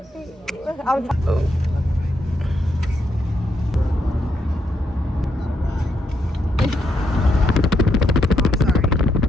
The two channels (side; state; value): both; normal; correlation 0.79